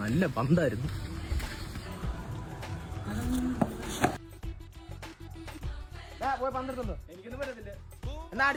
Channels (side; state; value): both; identical; correlation 1.00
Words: പന്തായിരുന്നു പോയി പന്തെടുത്തുണ്ടോ എനിക്കൊന്നും പറ്റത്തില്ല എന്നാ